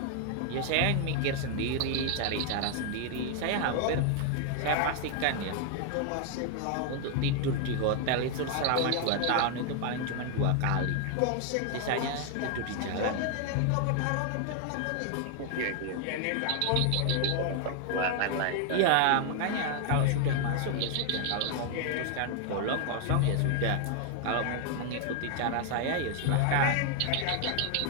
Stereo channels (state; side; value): different; both; correlation 0.00